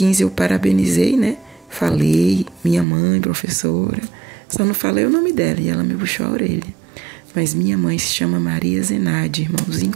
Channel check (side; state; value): left; drops out; at 2.9 s